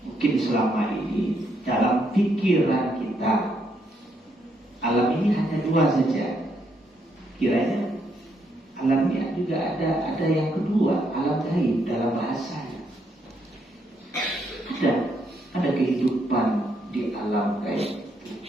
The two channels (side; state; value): both; normal; correlation 0.75